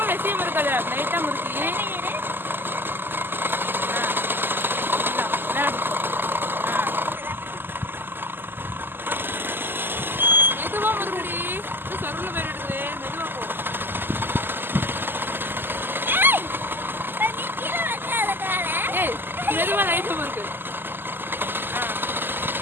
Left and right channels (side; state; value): left; late; 0.096 ms